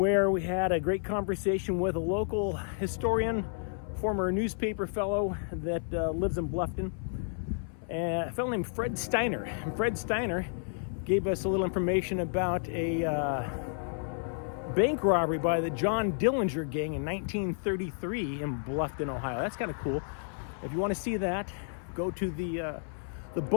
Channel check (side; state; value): right; silent; 57 dB below the other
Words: we had a great conversation with a local historian, former newspaper fellow that lives in Bluffton, a fellow named Fred Steiner. And Fred Steiner gave us a little information about a bank robbery by the John Dillinger gang in 1933 in Bluffton, Ohio. That's kind of cool. If you want to see that, go to the